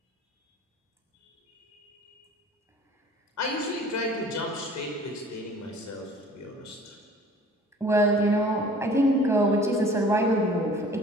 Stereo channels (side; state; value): both; normal; correlation 0.49